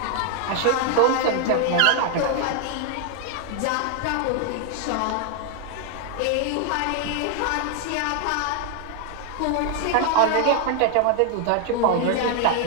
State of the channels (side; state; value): both; different; correlation 0.00